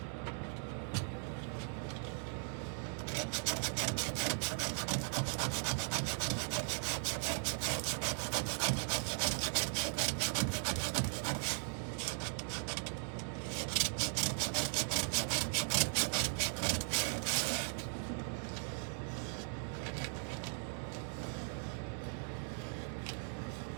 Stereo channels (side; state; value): left; silent; 52 dB below the other